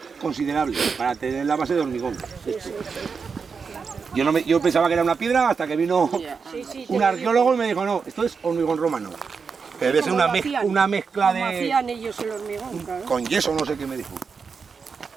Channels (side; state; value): left; quieter; 5.5 dB